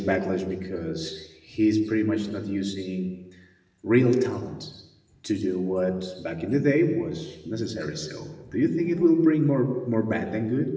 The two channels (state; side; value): identical; both; correlation 1.00